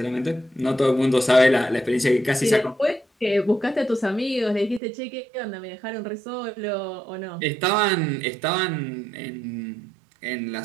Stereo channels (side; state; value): left; drops out; at 4.8 s